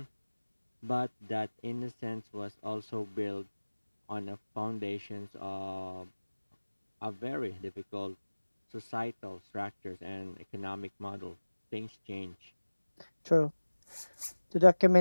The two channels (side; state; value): both; inverted; correlation -1.00